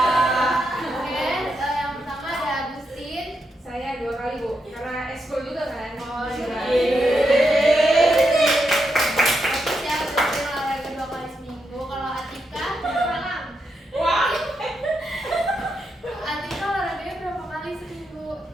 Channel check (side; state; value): both; normal; correlation 0.83